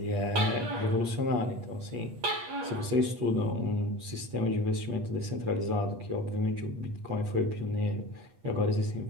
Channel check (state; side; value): late; left; 8.4 ms